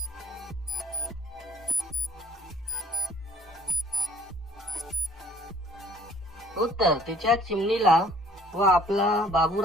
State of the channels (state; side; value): normal; both; correlation 0.56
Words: उत्तर, तिच्या चिमणीला व आपला